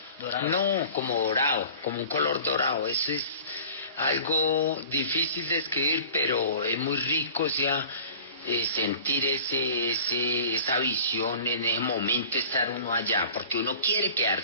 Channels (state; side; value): inverted; both; correlation -0.44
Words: ¿Dorado? No, como dorado, como un color dorado. Eso es algo difícil de escribir, pero es muy rico, o sea, sentir esa visión en ese momento, estar uno allá, porque uno quiere